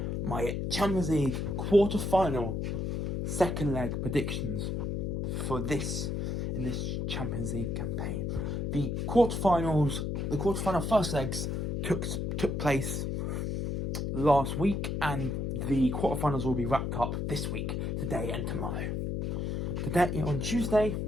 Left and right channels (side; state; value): left; noise; hum, 1 dB below the sound